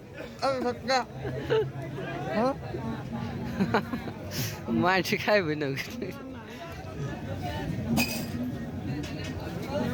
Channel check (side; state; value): both; identical; correlation 1.00